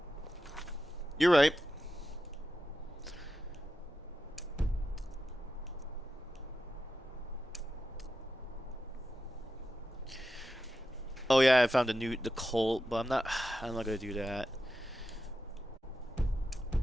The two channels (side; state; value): both; normal; correlation 0.90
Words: You're right. Oh yeah, I found the cult, but I'm not gonna do that.